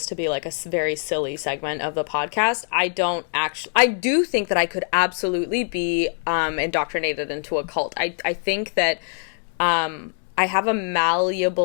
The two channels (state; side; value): silent; right; 63 dB below the other